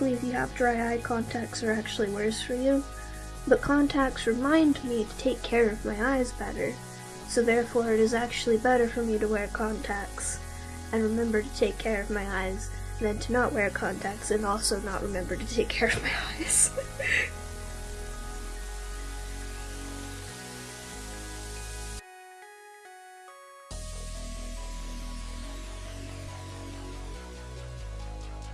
if you have dry eye, contacts are actually worse for you, but contacts remind me to take care of my eyes better, so therefore it is actually better for me to wear contacts and remember to take care of my eyes than to not wear contacts and also not remember to take care of my eyes.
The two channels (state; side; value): identical; both; correlation 1.00